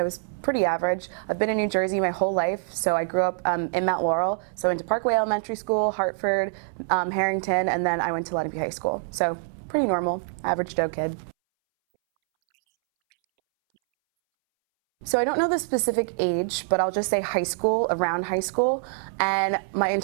was pretty average. I've been in New Jersey my whole life, so I grew up in Mount Laurel. So I went to Parkway Elementary School, Hartford, Harrington, and then I went to Lenape High School. So pretty normal, average Joe kid. So at what age did you want to become a teacher? So I don't know the specific age, but I'll just say high school, around high school. And my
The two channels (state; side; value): silent; left; 62 dB below the other